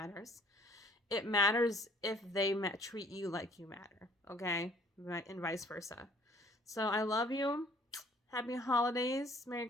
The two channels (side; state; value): both; normal; correlation 0.57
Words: It matters if they treat you like you matter, okay? And vice versa. So I love you. Happy holidays. Merry